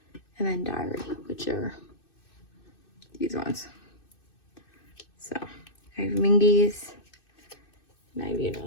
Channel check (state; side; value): late; right; 2.6 ms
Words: and then Diary, which are these ones. So I have Mingi's, and I have